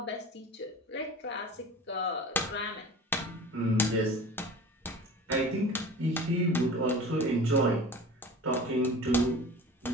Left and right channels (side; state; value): both; normal; correlation 0.37